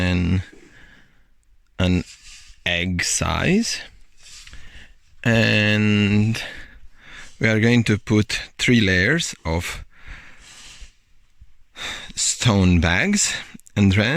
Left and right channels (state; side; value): identical; both; correlation 1.00